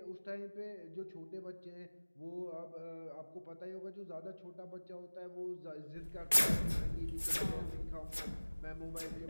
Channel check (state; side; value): inverted; both; correlation -1.00